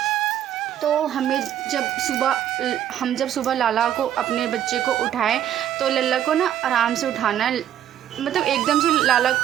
तो हम जब सुबह लाला को, अपने बच्चे को उठाएं तो लल्ला को ना आराम से उठाना है। मतलब एकदम से लाला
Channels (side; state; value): left; quieter; 10.9 dB